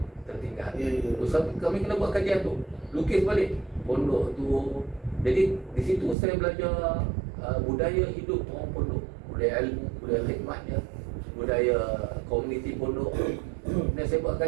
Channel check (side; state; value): left; drops out; at 6.2 s